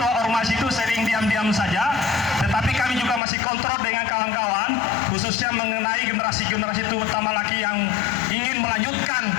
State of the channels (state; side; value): drops out; right; at 3.2 s